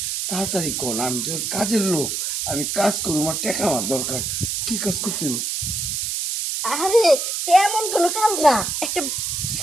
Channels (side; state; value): right; noise; hiss, 2 dB below the sound